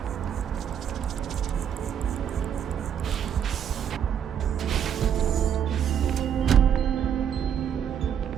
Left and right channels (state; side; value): quieter; left; 8.7 dB